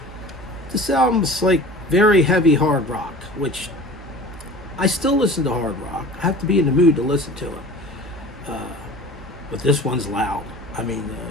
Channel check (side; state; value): both; normal; correlation 0.41